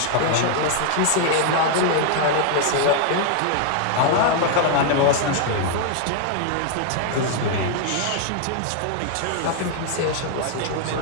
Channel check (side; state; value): both; different; correlation 0.00